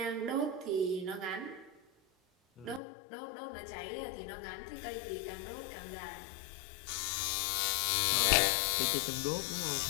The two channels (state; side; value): drops out; right; at 2.8 s